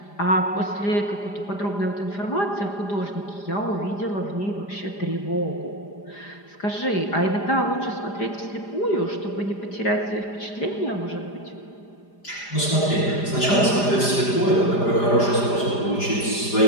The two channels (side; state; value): right; late; 5.0 ms